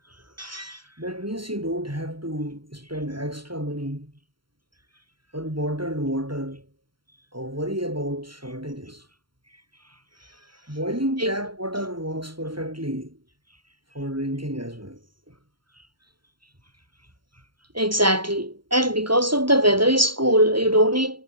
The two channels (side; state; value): left; late; 0.73 ms